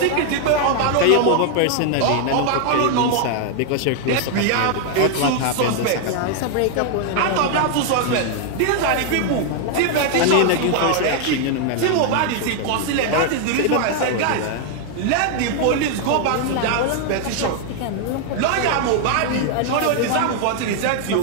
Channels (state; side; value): different; both; correlation 0.00